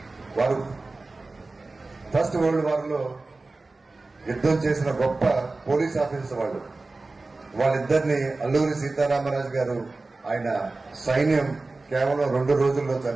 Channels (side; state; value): left; quieter; 3.4 dB